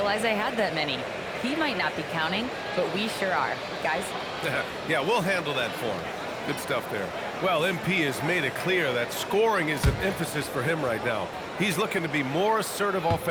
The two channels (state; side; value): identical; both; correlation 1.00